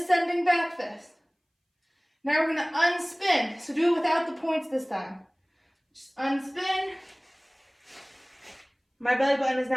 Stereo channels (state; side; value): identical; both; correlation 1.00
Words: back fist. Now we're going to unspin. So do it without the points this time. Just unspin. My belly button is